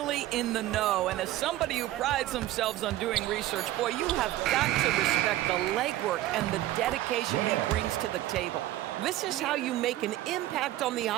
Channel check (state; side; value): quieter; left; 15.0 dB